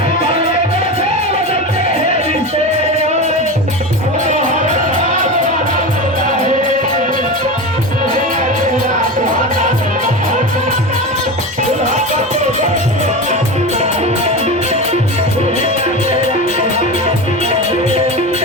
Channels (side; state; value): both; normal; correlation 0.24